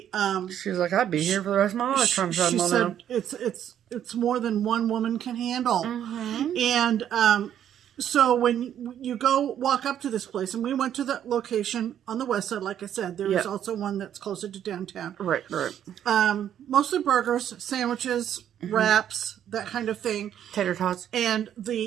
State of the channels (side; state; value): left; quieter; 10.1 dB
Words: she was like, I'd be here for the rest of my life trying to shut them all down. It's more than one woman can handle. And so when you walk up to this place, and we went to the location on the west side, like I said, there is also one that's closer to downtown. Right. Mostly burgers, sandwiches, wraps, that kind of thing. Tater tots. And